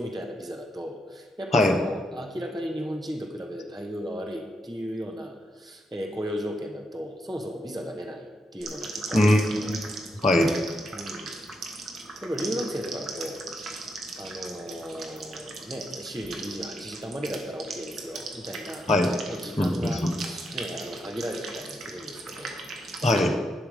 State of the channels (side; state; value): both; normal; correlation 0.81